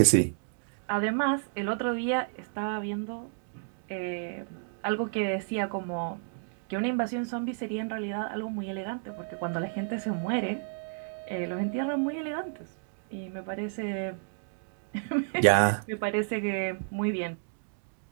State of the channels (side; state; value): left; silent; digital silence